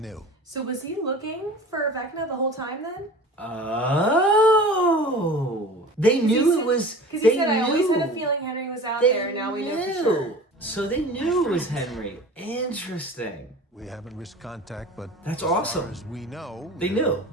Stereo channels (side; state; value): both; normal; correlation 0.39